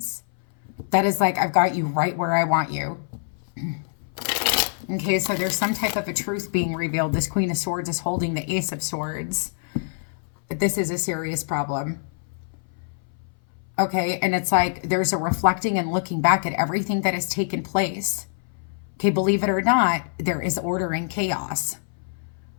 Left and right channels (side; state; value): right; silent; 60 dB below the other